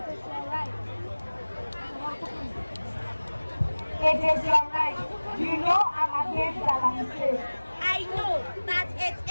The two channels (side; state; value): both; inverted; correlation -1.00